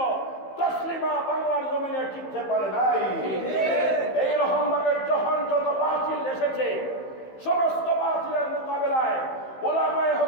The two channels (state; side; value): late; right; 15 ms